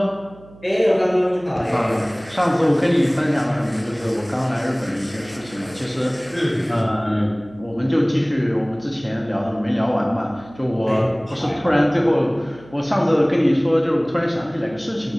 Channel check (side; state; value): right; noise; hum, 22 dB below the sound